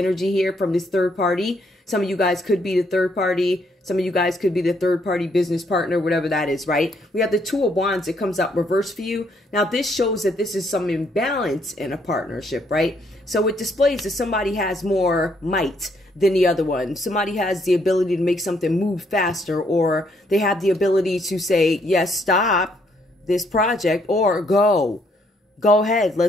here from this third party. Some of you guys could be the third party. Some of you guys could be the third party business partner, whatever that is, right? We have the 2 of Wands that comes out reverse for you. Now, this shows that this is some imbalance in a partnership, right? So it displays that somebody has more might than the other one. Somebody has the ability to make something move faster, or they have the ability to say, yes, stop this project, or go ahead,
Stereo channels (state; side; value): normal; both; correlation 0.71